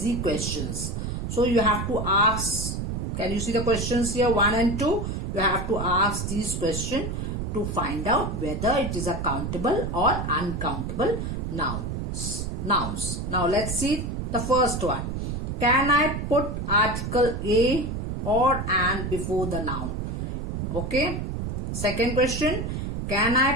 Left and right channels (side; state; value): right; noise; rumble, 3 dB below the sound